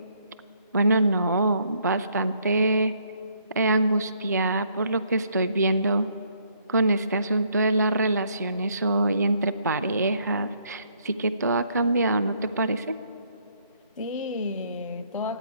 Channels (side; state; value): both; inverted; correlation -0.68